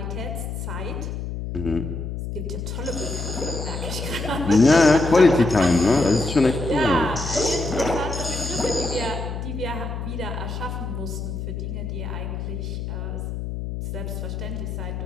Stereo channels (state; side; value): noise; left; hum, 5 dB below the sound